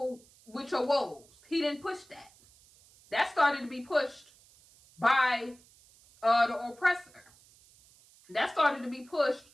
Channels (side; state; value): right; noise; hiss, 27 dB below the sound